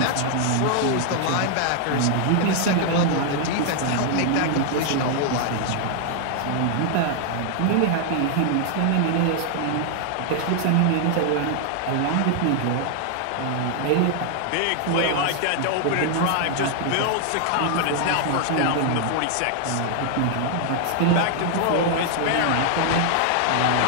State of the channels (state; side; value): different; both; correlation 0.00